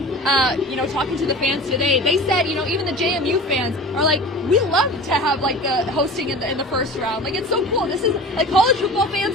Talking to the fans today, they said, even the JMU fans are like, we love to have the hosting in the first round. It's so cool. This is college football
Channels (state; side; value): normal; both; correlation 0.37